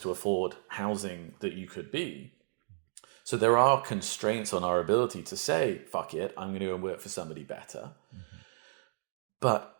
to afford housing that you could be. So there are constraints on our ability to say, "Fuck it, I'm going to go and work for somebody better." Mm-hmm. But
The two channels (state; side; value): silent; left; digital silence